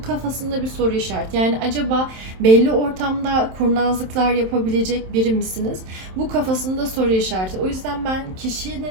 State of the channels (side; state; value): left; late; 27 ms